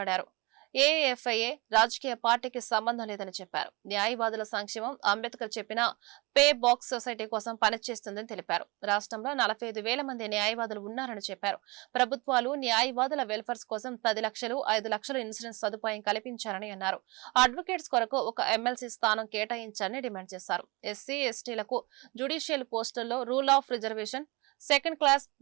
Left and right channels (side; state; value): left; quieter; 25.6 dB